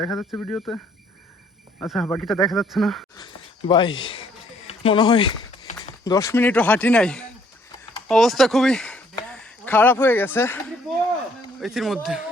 দেখা যাচ্ছে ভিডিওতে। আচ্ছা, বাকিটা দেখা যাচ্ছে না। ভাই মনে হয় 10 মিনিটও হাঁটি নাই, অবস্থা খুবই খারাপ হয়ে গেছে এটির মধ্যে।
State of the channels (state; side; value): normal; both; correlation 0.64